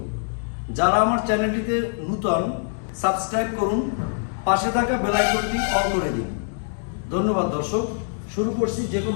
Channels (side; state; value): right; silent; digital silence